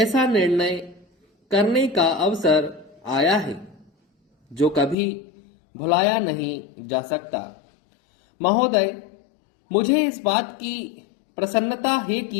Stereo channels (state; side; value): drops out; right; at 5.0 s